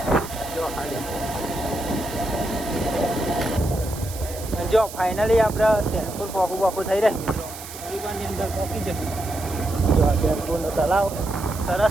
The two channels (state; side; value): noise; right; hiss, 13 dB below the sound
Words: જો ખાલી. જો ફાઇનલી આપણે ચેનપુર પોકું થઈ રહ્યા મિત્રો. હરિવાનની અંદર પોકી જશે. જો આ ચેનપુરનો તલાવ